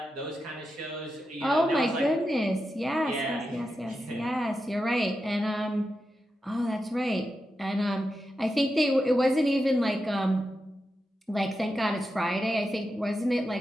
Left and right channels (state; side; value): normal; both; correlation 0.89